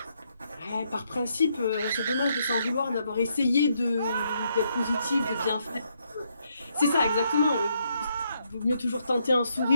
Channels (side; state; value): both; inverted; correlation -0.76